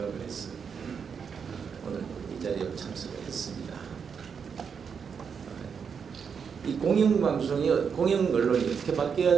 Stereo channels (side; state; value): left; quieter; 6.5 dB